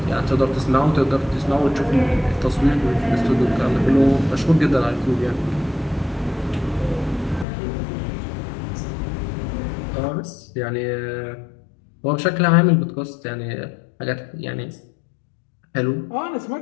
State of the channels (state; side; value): drops out; right; at 7.5 s